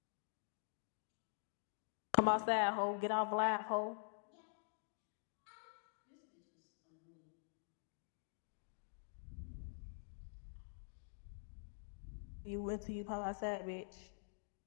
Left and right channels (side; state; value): right; silent; digital silence